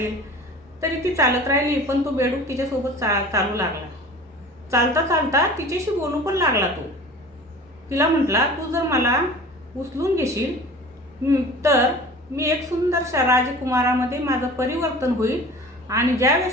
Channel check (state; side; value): normal; both; correlation 0.41